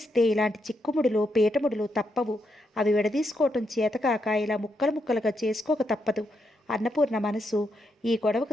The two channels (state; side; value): normal; both; correlation 0.81